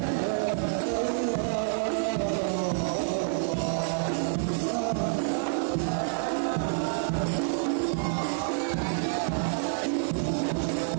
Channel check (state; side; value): silent; left; 56 dB below the other